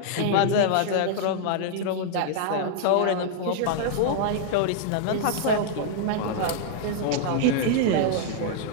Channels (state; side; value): different; both; correlation -0.01